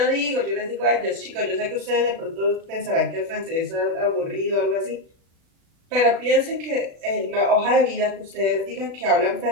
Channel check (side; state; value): left; late; 36 ms